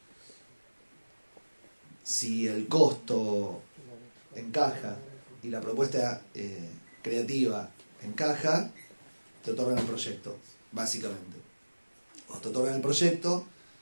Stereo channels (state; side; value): inverted; both; correlation -1.00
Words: Si el costo encaja y la propuesta creativa encaja, te otorgan el proyecto, básicamente. O te otorgan el proyecto,